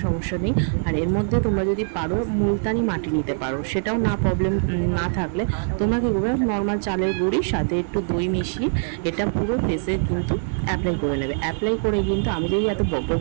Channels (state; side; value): silent; left; 63 dB below the other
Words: সমস্যা নেই। আর এর মধ্যে তোমরা যদি পারো মুলতানি মাটি নিতে পারো, সেটাও না প্রবলেম না থাকলে তোমরা কী করবে, নর্মাল চালের গুঁড়ির সাথে একটু দই মিশিয়ে এটা পুরো ফেসে কিন্তু অ্যাপ্লাই করে নেবে। অ্যাপ্লাই করে কিন্তু আমি যদি এত বক